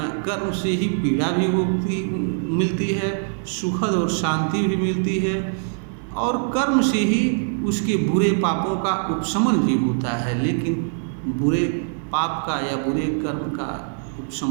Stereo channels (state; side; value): silent; left; digital silence